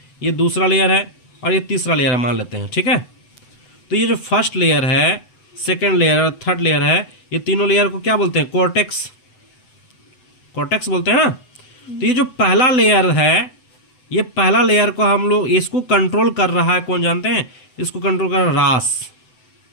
ये दूसरा लेयर है और ये तीसरा लेयर है मान लेते हैं, ठीक है। तो ये जो फर्स्ट लेयर है, सेकेंड लेयर और थर्ड लेयर है, ये तीनों लेयर को क्या बोलते हैं? कॉर्टेक्स, कॉर्टेक्स बोलते हैं ना। तो ये जो पहला लेयर है, ये पहला लेयर को हम लोग इसको कंट्रोल कर रहा है, कौन जानते हैं? इसको कंट्रोल कर रहा है रास,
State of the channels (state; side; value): late; right; 8.0 ms